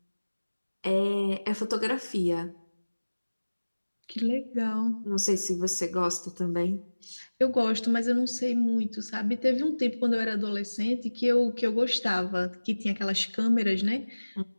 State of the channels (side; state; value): both; inverted; correlation -1.00